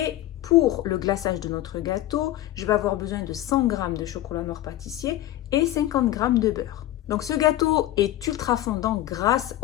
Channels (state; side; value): quieter; right; 14.5 dB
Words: pour le glaçage de notre gâteau, je vais avoir besoin de 100 g de chocolat noir pâtissier et 50 g de beurre. Donc ce gâteau est ultra fondant grâce